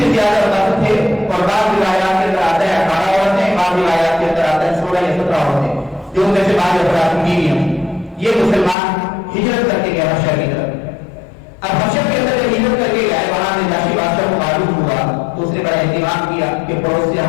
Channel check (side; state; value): right; drops out; at 8.8 s